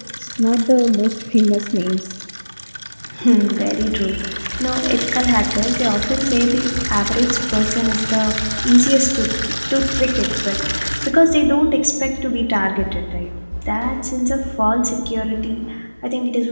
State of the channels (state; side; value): inverted; both; correlation -1.00